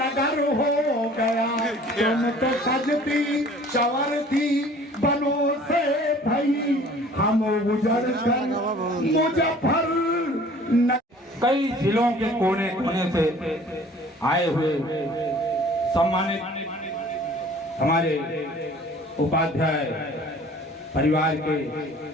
हो गया। तुम तो सजती संवरती बनो से भाई, हम उजड़ कर मुजफ्फर नगर। कई जिलों के कोने कोने से आए हुए सम्मानित हमारे उपाध्याय परिवार के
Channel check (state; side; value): normal; both; correlation 0.50